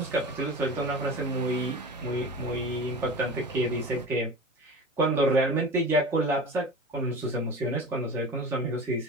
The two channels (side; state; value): both; normal; correlation 0.33